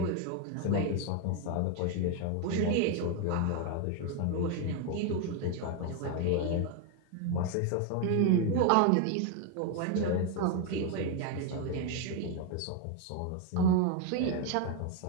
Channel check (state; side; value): different; both; correlation 0.01